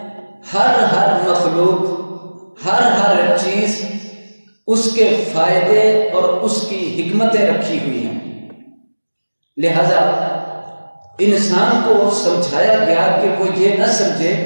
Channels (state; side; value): inverted; both; correlation -1.00